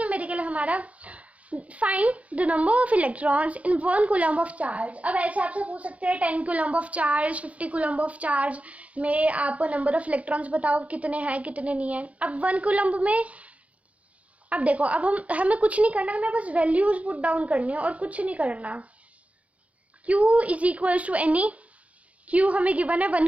हमारा find the number of electrons in 1 coulomb of charge. अब ऐसे आपसे पूछ सकते हैं 10 coulomb of charge, 50 coulomb of charge में आप नंबर ऑफ इलेक्ट्रॉन्स बताओ कितने हैं कितने नहीं हैं। अब 1 कूलम्ब में, अब देखो अब हमें कुछ नहीं करना, हमें बस वैल्यूज पुट डाउन करनी है और कुछ नहीं करना। Q is equals to NE, Q हमें गिवन है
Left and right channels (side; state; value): left; late; 0.066 ms